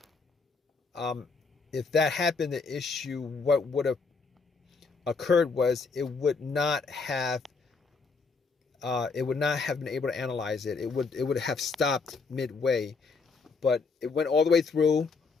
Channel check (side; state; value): right; quieter; 4.6 dB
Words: if that happened, the issue, what would have occurred was it would not have been able to analyze it. It would have stopped midway, but it went all the way through.